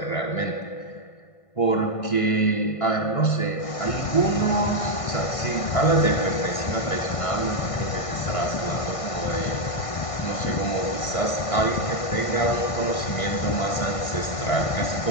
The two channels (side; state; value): right; late; 1.5 ms